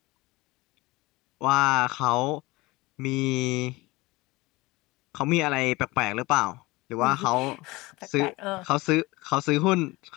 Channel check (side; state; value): right; quieter; 21.6 dB